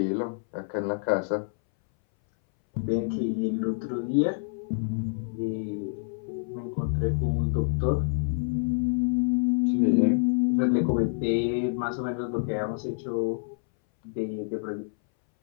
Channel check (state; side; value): silent; right; 60 dB below the other